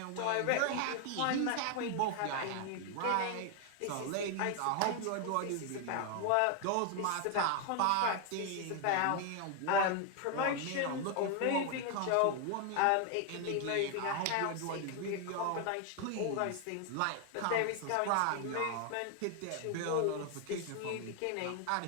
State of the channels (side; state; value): both; different; correlation 0.00